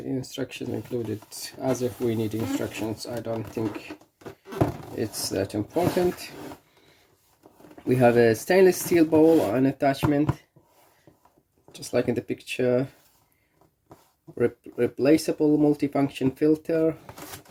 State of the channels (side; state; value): both; identical; correlation 1.00